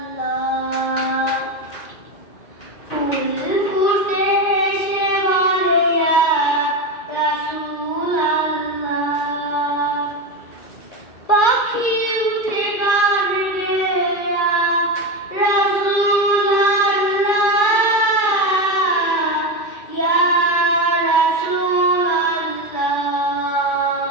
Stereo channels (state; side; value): late; right; 2.3 ms